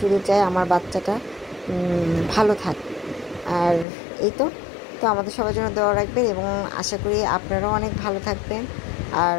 চাই আমার বাচ্চাটা ভালো থাক। আর এই তো আমাদের সবার জন্য দোয়া রাখবেন, এবং আশা করি আপনারাও অনেক ভালো থাকবেন। আর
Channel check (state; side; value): drops out; right; at 3.9 s